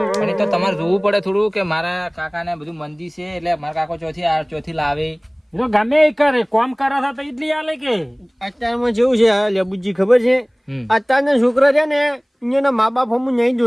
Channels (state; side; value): identical; both; correlation 1.00